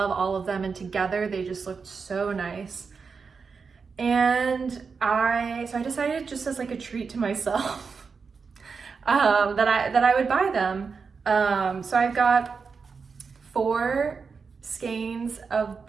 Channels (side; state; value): left; quieter; 5.2 dB